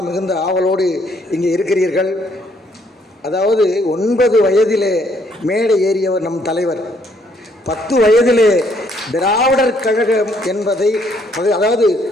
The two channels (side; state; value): both; normal; correlation 0.68